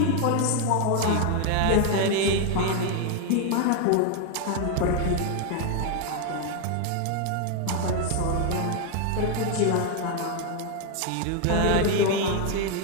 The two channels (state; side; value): different; both; correlation 0.01